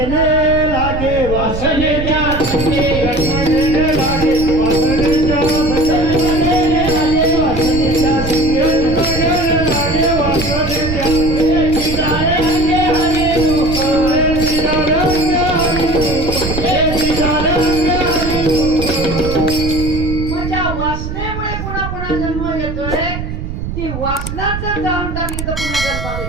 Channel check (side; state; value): right; noise; rumble, 6 dB below the sound